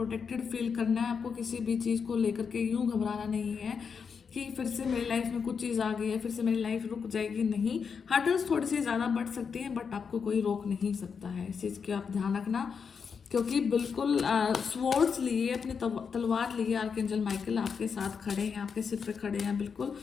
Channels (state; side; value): quieter; right; 6.1 dB